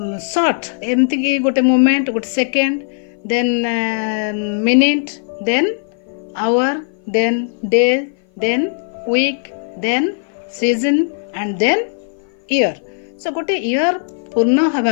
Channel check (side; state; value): right; silent; 57 dB below the other